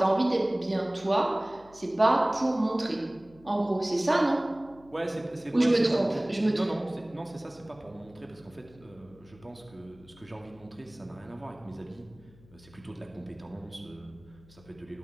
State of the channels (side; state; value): left; noise; hum, 25 dB below the sound